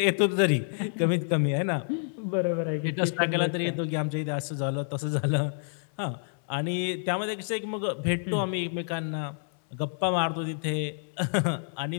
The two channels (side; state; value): right; silent; 59 dB below the other